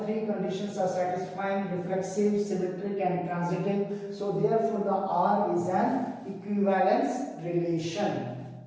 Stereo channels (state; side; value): identical; both; correlation 1.00